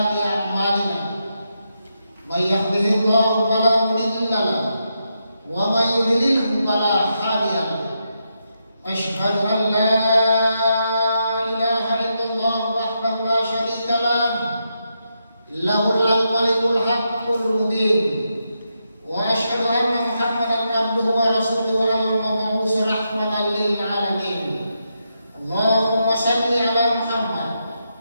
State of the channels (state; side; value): inverted; both; correlation -0.83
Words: a'malina. May yahdihillahu fala mudilla lahu wa may yudlilhu fala hadiya lahu. Asyhadu an la ilaha illallah wahdahu la syarika lahu lahul malikul haqqul mubin wa asyhadu anna Muhammadan abduhu wa rasuluhu al-mab'uts rahmatan lil alamin. Allahumma shalli ala Muhammad